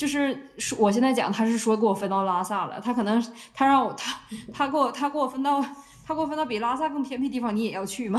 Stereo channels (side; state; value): both; identical; correlation 1.00